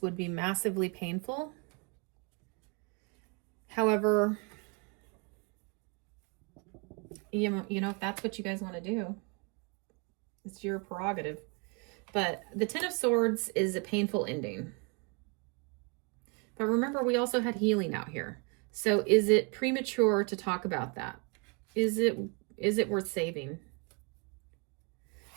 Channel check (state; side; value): quieter; left; 33.0 dB